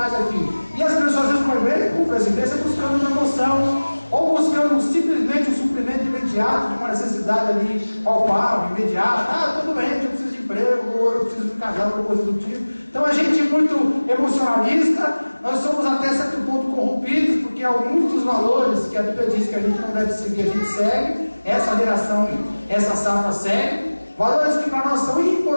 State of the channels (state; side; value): inverted; both; correlation -1.00